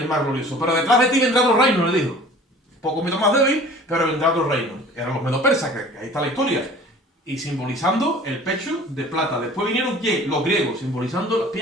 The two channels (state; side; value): normal; both; correlation 0.46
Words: más glorioso. Pero detrás de ti vendrá otro reino, le dijo. Un poco más débil, pero vendrá otro reino. Eran los medo-persas, que ahí está la historia. Y simbolizando el pecho de plata. Después vinieron, ¿quién? Los griegos, simbolizando las